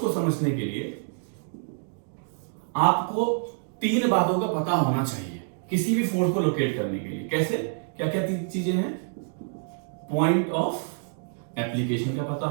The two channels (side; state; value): left; silent; digital silence